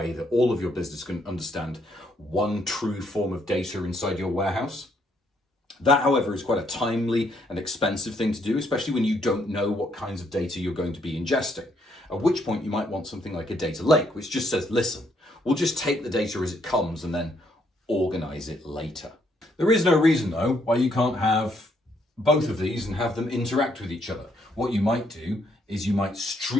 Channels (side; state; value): both; normal; correlation 0.72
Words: that all of your business can understand one true form of data inside your warehouse. That, however, is quite a timely and expensive thing to do, especially when you don't know what kinds of data you're going to be ingesting. At which point you might want something like a data lake, which just says, listen, we'll just take the data as it comes and then organize it later. There is no reason, though, why you can't have both of these and have them interact with each other. What you might do is you might